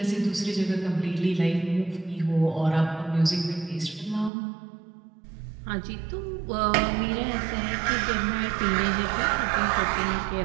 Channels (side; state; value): left; drops out; at 4.3 s